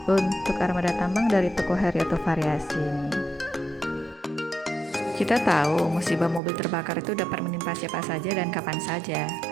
untuk armada tambang dari toko Heriato Variasi. Kita tahu musibah mobil terbakar itu dapat menimpa siapa saja dan kapan saja.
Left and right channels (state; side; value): drops out; left; at 6.4 s